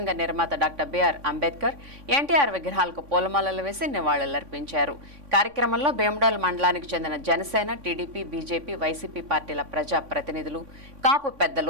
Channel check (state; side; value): late; left; 3.5 ms